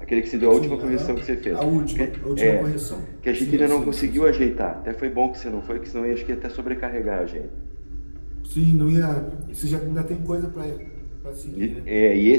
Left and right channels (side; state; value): both; inverted; correlation -1.00